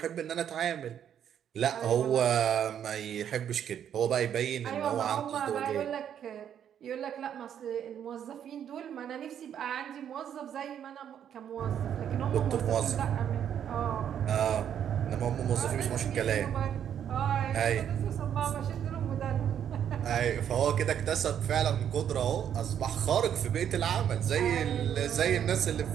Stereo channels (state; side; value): quieter; left; 9.3 dB